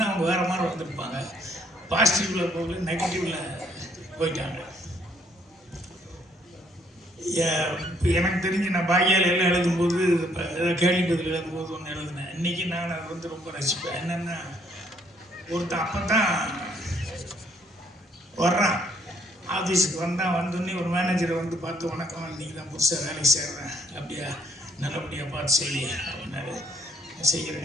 அவங்க வேறு மாதிரி வந்திருப்பாங்க. பாசிட்டிவில் போகல, நெகட்டிவில் போயிட்டாங்க. எனக்கு தெரிஞ்சு நான் பாக்கியால் எல்லாம் எழுதும்போது ஏதாவது கேள்வி பதில் எழுதும்போது ஒன்று எழுதினேன். இன்றைக்கி நான் அதை ரொம்ப ரசிப்பேன். என்னென்னா, ஒருத்தன் அப்போ தான் வர்றான், ஆஃபீஸுக்கு வந்தோடனே ஒரு மேனேஜரை பார்த்து, வணக்கம், இன்றைக்கி தான் புதுசாக வேலைக்கு சேர்றேன், அப்படியா, நல்லபடியாக பார்த்து செய்ய அப்படின்னாரு.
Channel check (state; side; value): normal; both; correlation 0.66